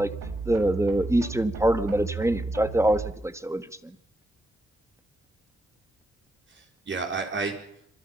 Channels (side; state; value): both; normal; correlation 0.83